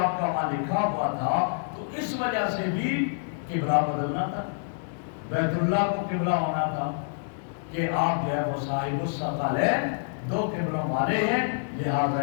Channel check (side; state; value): right; silent; digital silence